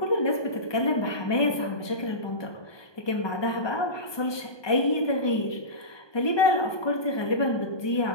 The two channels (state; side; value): late; right; 1.2 ms